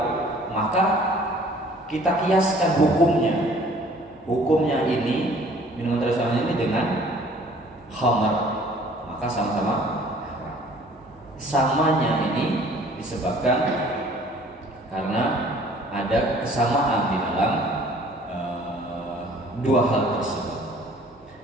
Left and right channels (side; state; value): both; normal; correlation 0.53